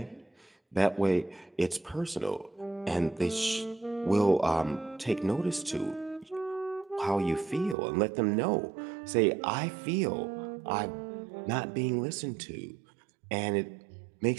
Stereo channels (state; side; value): drops out; left; at 7.8 s